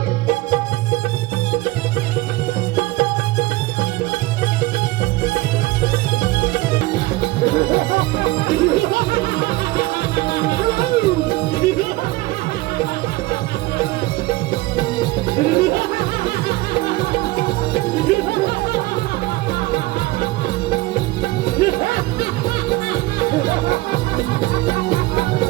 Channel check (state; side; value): quieter; left; 19.8 dB